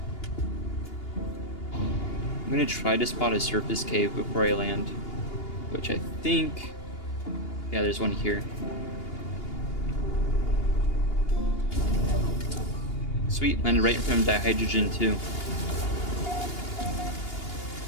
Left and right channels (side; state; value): right; late; 2.8 ms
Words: I'm gonna try to spot a surface cave before I land, which I think, yeah, there's one here. Sweet, landed right in front of dihydrogen too.